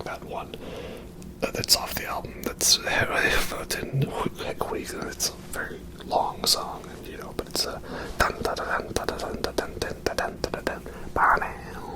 that one that's off the album. It's a very long song, you know, but it's a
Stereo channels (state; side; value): identical; both; correlation 1.00